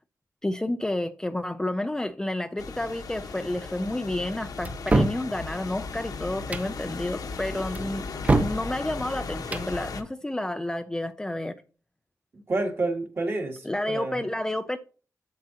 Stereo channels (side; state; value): both; normal; correlation 0.90